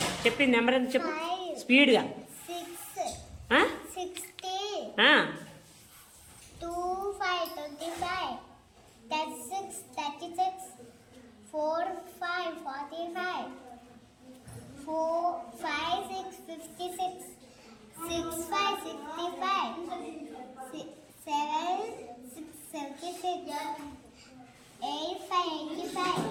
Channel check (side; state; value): both; identical; correlation 1.00